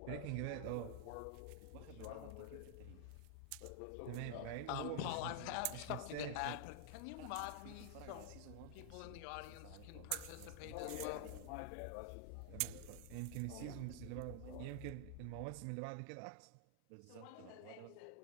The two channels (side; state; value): both; different; correlation -0.01